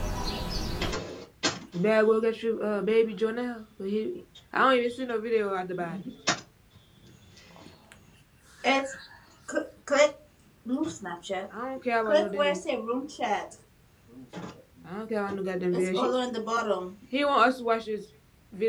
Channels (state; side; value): identical; both; correlation 1.00